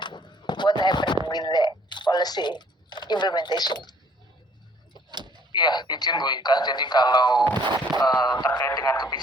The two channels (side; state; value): both; normal; correlation 0.59